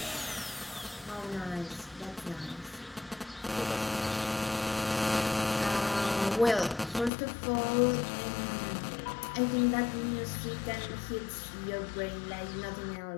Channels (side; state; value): right; drops out; at 7.1 s